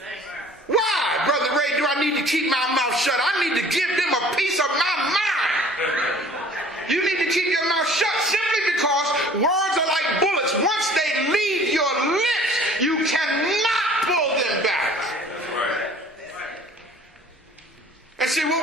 Why, Brother Ray, do I need to keep my mouth shut? I need to give them a piece of my mind. You need to keep your mouth shut simply because words are like bullets. Once they leave your lips, you cannot pull them back. And see, what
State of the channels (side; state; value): both; normal; correlation 0.50